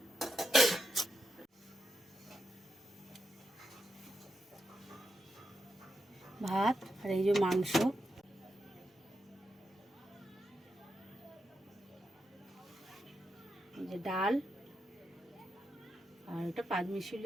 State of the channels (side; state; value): both; normal; correlation 0.85